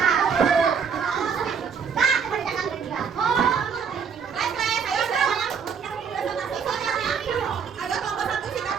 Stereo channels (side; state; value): left; quieter; 6.4 dB